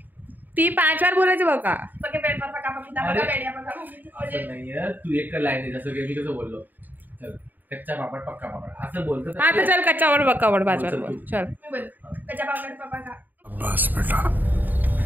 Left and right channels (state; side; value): late; left; 0.087 ms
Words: ती 5 वेळा बोलायचं बघा. पके पेड़ पर पका पपीता. पका पेड़ जा पका पपीता. असं नाहीये. तू एक लाईन आहे जसं की मी कसं बोललो. चल कच्चा पापड पक्का पापड असं बोलतो. हा तर चल कच्चावर बक्कावर 5 वेळा बोल. चल मैं बोल कच्चा पापड़ पापा का. बस बेटा